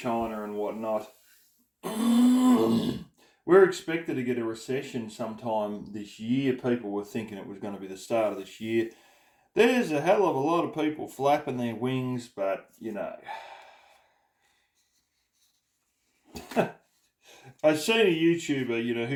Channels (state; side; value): identical; both; correlation 1.00